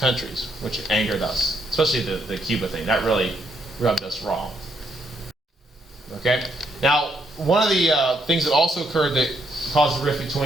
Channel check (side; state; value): both; normal; correlation 0.74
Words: which angered us, especially the Cuba thing. That really rubbed us wrong. Okay? Now, one of the things that also occurred that caused a rift